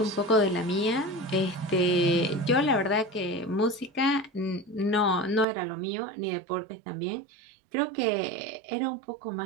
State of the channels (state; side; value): drops out; left; at 5.5 s